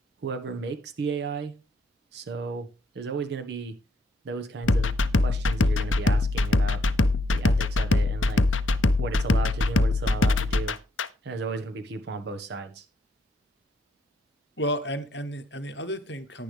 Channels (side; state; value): both; normal; correlation 0.74